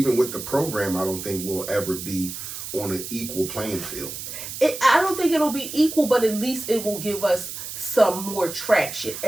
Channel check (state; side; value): noise; right; hiss, 8 dB below the sound